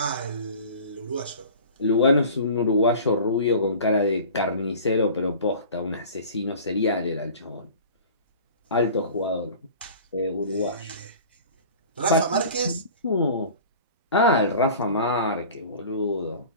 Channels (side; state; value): both; inverted; correlation -0.42